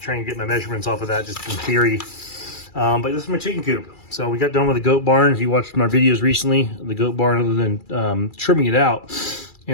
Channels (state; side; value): late; right; 2.3 ms